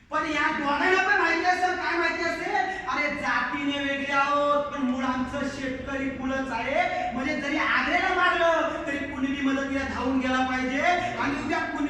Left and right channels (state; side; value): identical; both; correlation 1.00